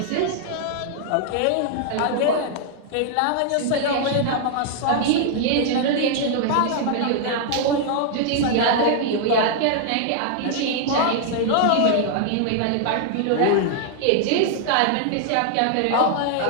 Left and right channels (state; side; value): different; both; correlation 0.00